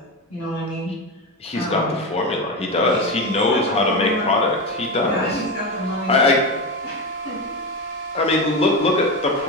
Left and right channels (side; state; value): both; normal; correlation 0.18